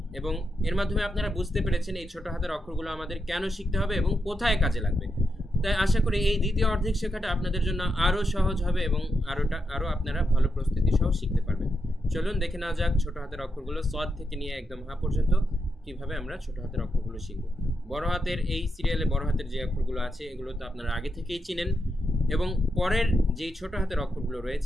এবং এর মাধ্যমে আপনারা বুঝতে পেরেছেন এই ছোট হাতের অক্ষরগুলো আমাদের কেন শিখতে হবে এবং কোথায় কাজে লাগবে। তাই আশা করি এই দ্বিতীয় অর্ধেক শেখাটা আপনাদের জন্য আরও সহজ হবে এবং আরও আপনারা ভালো প্রস্তুতি সহ শিখতে পারবেন। চলুন দেখে নেওয়া যাক ছোট হাতের অক্ষরগুলো সদ থেকে নিয়ে একদম হা পর্যন্ত কিভাবে আমরা ছোট হাতের অক্ষরগুলো শিখব। বড় হাতের এই সিরিয়ালে বড় হাতের যে অক্ষরগুলো আছে এগুলো তো আপনারা আগে থেকেই চিনেন এবং পরের যেই ছোট হাতের অক্ষরগুলো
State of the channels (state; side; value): normal; both; correlation 0.84